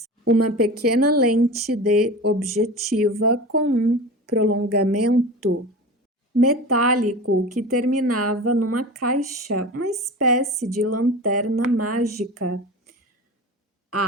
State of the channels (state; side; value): normal; both; correlation 0.32